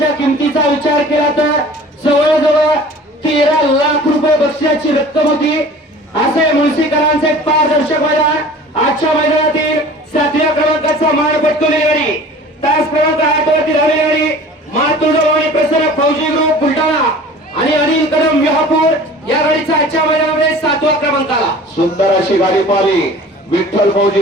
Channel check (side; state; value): both; normal; correlation 0.44